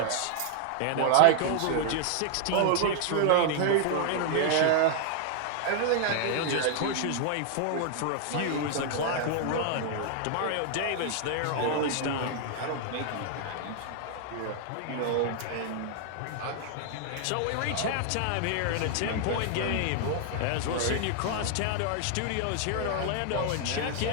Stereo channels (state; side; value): different; both; correlation 0.00